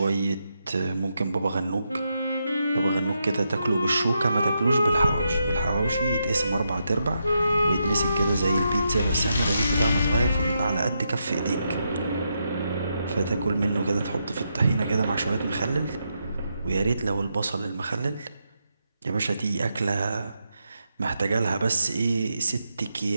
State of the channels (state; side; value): inverted; both; correlation -0.83